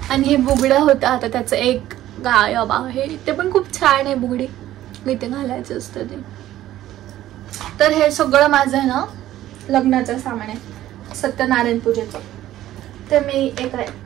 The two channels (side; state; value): left; quieter; 13.7 dB